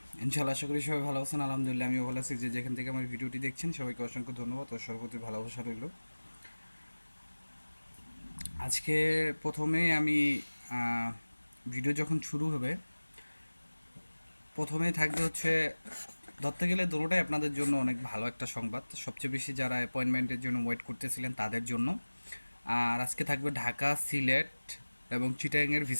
ইনশাআল্লাহ আশা করি সবাই ভালো আছেন। আলহামদুলিল্লাহ আমিও ভালো আছি। যে যেখান থেকে আমার ভিডিওটি দেখছেন সবাইকে অসংখ্য ধন্যবাদ ও সর্বপ্রতি ভালোবাসা রইল। আজকে প্রথমেই আমি ভিডিও যখন শুরু হবে প্রথমেই থাকবে হচ্ছে ধরতে গেলে দুটোটাই আপনাদের জন্য অনেক ভালো একটা সংবাদ। সবচেয়ে বেশি যারা অ্যাপয়েন্টমেন্টের জন্য ওয়েট করতেছিলেন তাদের জন্য। আর আজকে থাকবে ঢাকা, সিলেট এবং চিটাগাংয়ের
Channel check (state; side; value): inverted; both; correlation -1.00